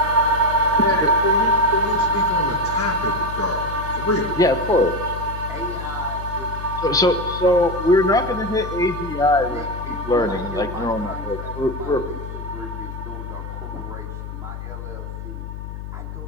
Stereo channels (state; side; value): noise; left; hum, 9 dB below the sound